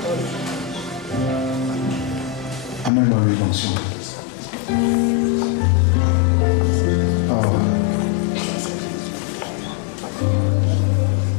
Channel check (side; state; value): right; drops out; at 2.9 s